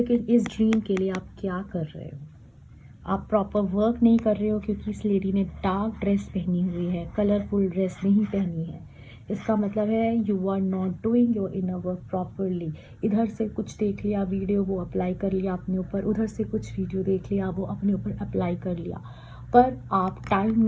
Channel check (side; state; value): both; identical; correlation 1.00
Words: इस ड्रीम के लिए आप क्या कर रहे हो? आप प्रॉपर वर्क नहीं कर रहे हो क्योंकि इस लेडी ने डार्क ड्रेस पहनी हुई है, कलरफुल ड्रेस नहीं पहनी है। इसका मतलब है you are not doing your inner work properly. इधर से कुछ देख लिया वीडियो, वो अप्लाई कर लिया अपने ऊपर, उधर से कुछ वीडियो देख लिया, वो अपने ऊपर अप्लाई कर लिया, पर आप टाइम